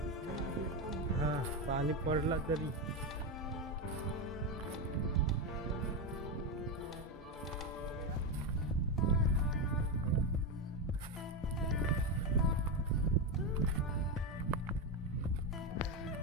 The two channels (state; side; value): normal; both; correlation 0.11